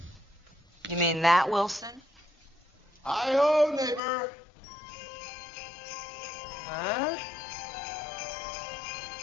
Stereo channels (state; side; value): drops out; right; at 4.0 s